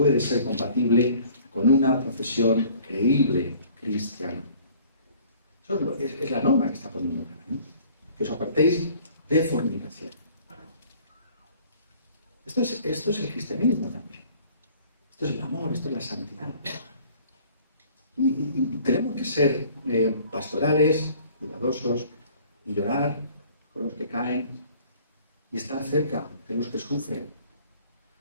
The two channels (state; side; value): inverted; both; correlation -0.53